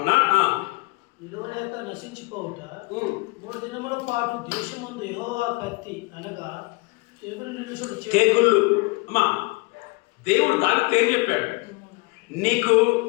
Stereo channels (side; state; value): right; quieter; 26.6 dB